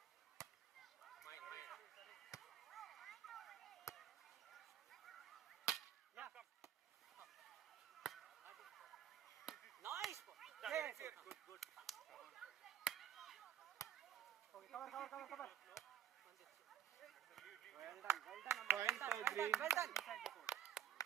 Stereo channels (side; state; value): left; quieter; 9.5 dB